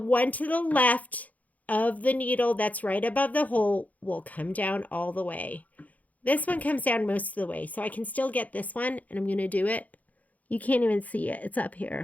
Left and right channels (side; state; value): right; late; 0.076 ms